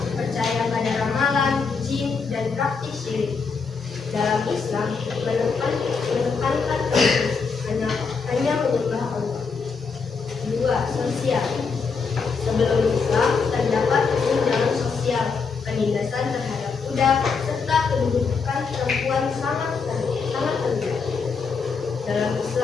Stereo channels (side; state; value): right; quieter; 5.1 dB